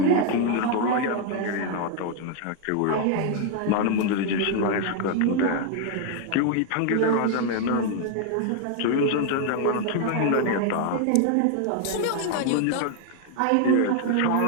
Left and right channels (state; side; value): different; both; correlation 0.01